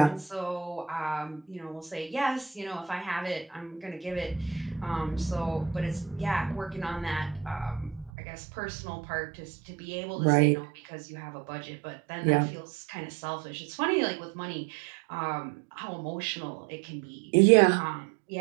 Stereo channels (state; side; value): drops out; left; at 8.1 s